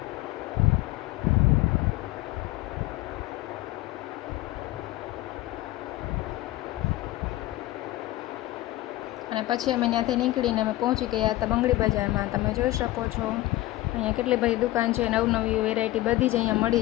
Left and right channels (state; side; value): quieter; right; 17.1 dB